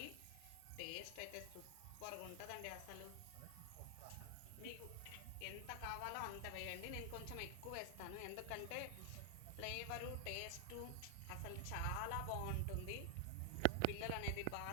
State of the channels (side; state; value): both; different; correlation 0.00